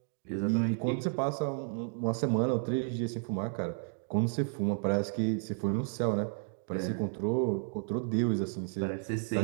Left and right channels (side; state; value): left; silent; digital silence